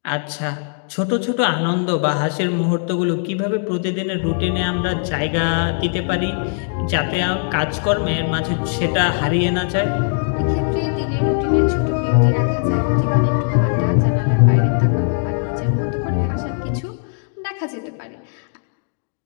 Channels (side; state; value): right; silent; digital silence